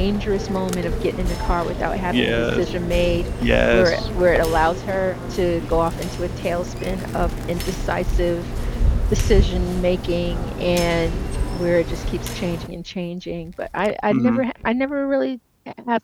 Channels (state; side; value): identical; both; correlation 1.00